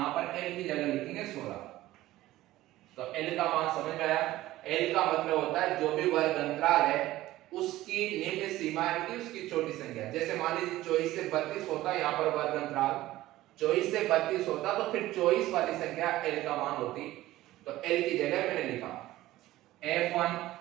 पर L की जगह लिखेंगे 16। तो L का मान समझ में आया। L का मतलब होता है जो भी वर्ग अंतराल है उसकी निम्न सीमा की उसकी छोटी संख्या। जैसे मान लीजिए 24 से 32 होता है यहाँ पर वर्ग अंतराल, 24 से 32 होता तो फिर 24 वाली संख्या L का मान होती। तो L की जगह मैंने लिखा F1।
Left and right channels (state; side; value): quieter; left; 16.1 dB